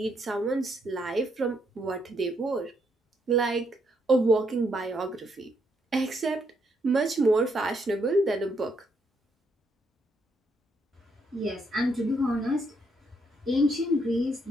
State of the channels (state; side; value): normal; both; correlation 0.75